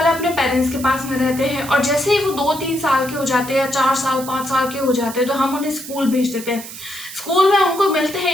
अपने पेरेंट्स के पास में रहते हैं, और जैसे ही वो 2-3 साल के हो जाते हैं या 4 साल 5 साल के हो जाते हैं तो हम उन्हें स्कूल भेज देते हैं। स्कूल में उनको मिलते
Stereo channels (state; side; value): noise; right; hiss, 12 dB below the sound